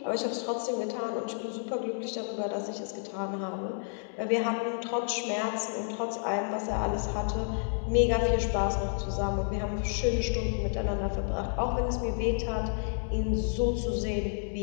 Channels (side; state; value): right; silent; digital silence